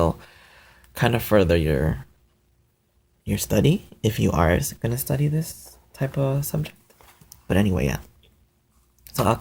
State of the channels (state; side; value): identical; both; correlation 1.00